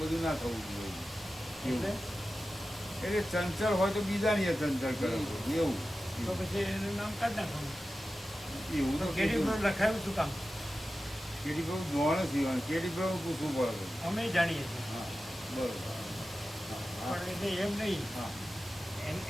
બધું ના થવું જોઈએ એટલે? એવું. એટલે ચંચળ હોય તો બીજાની એ ચંચળ કરે એવું તો પછી એનું નામ કાઢ નાખવાનું. એવું તો તો કેડી પ્રભુ લખાયું શું કામ? કેડી પ્રભુ જોવાનું સીવાનું કેડી પ્રભુ પૂછવું પડે. અમે જાણીએ છીએ હા બરોબર. હા પણ એટલે એમ નહીં. હા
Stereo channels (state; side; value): normal; both; correlation 0.94